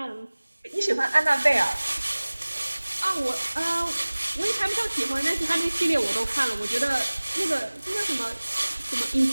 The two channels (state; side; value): inverted; both; correlation -1.00